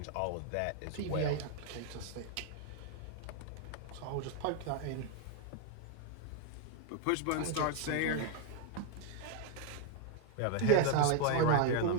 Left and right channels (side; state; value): both; different; correlation 0.00